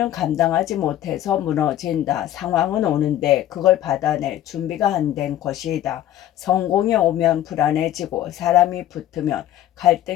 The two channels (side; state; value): right; quieter; 12.5 dB